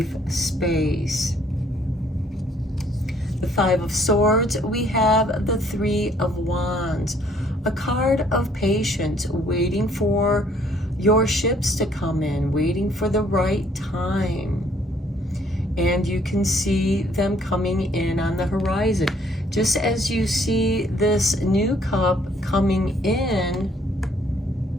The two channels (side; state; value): both; normal; correlation 0.63